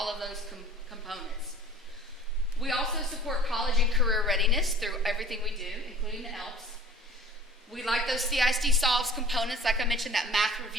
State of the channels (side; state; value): both; normal; correlation 0.45